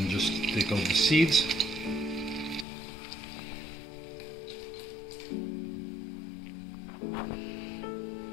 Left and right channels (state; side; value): drops out; right; at 2.7 s